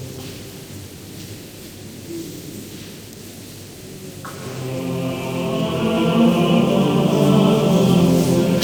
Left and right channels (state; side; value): identical; both; correlation 1.00